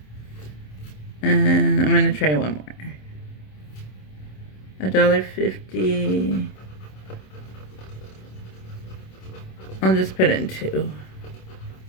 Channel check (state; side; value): late; right; 27 ms